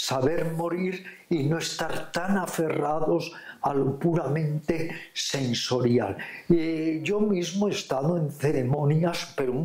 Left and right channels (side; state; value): both; identical; correlation 1.00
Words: morir y no estar tan aferrados a lo puramente sensorial. Yo mismo he estado en ceremonias, pero